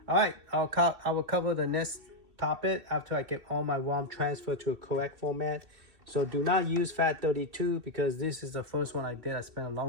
All right, I will cover the next topic after I get all my ROM transferred to a correct format. So do not use FAT32 because this is the first one I did. I spent a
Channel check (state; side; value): late; left; 2.7 ms